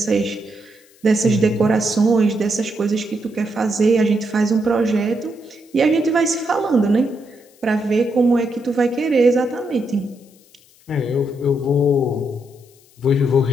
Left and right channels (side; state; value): left; noise; hiss, 29 dB below the sound